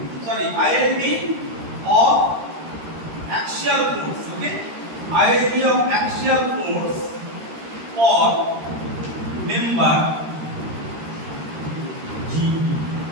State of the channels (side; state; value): left; late; 13 ms